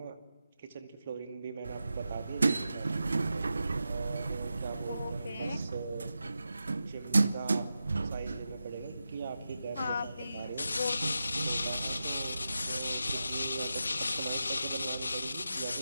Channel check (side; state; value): both; inverted; correlation -0.90